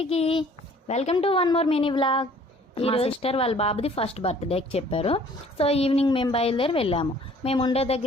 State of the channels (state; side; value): normal; both; correlation 0.55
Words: welcome to one more mini vlog. మా sister వాళ్ళ బాబుది ఫస్ట్ బర్త్డేకి చెప్పారు. సో ఈవినింగ్ మేము బయలుదేరి వెళ్ళాము. మేము ఉండే